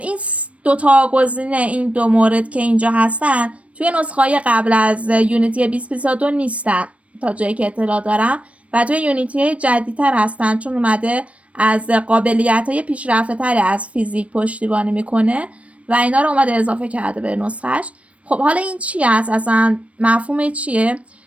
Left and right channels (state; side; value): late; left; 0.064 ms